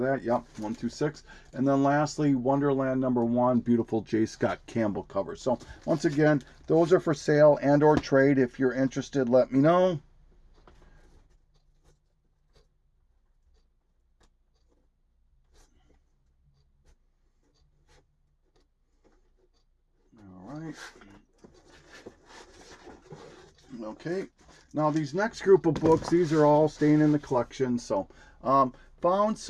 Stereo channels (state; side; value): identical; both; correlation 1.00